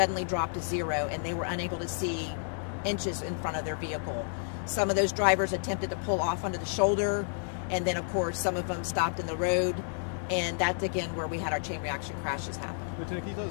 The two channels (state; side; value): silent; right; digital silence